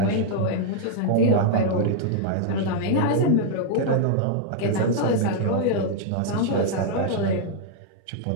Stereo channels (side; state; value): both; different; correlation -0.01